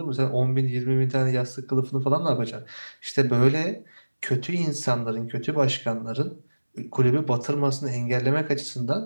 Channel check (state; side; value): inverted; both; correlation -1.00